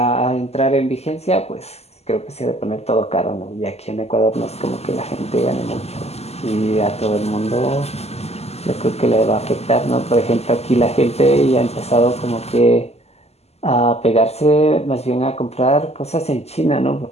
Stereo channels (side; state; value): right; late; 0.30 ms